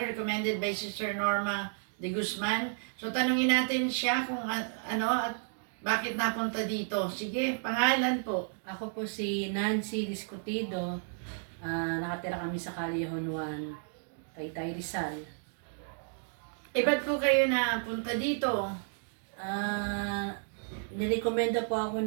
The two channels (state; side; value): silent; left; digital silence